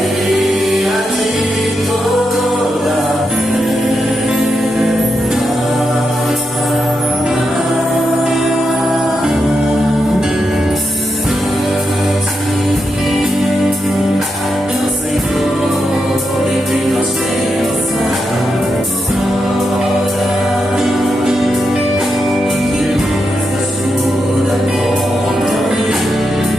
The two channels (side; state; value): both; normal; correlation 0.85